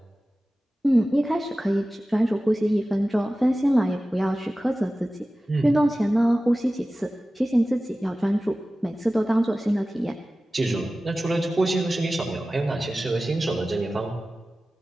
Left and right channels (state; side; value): normal; both; correlation 0.96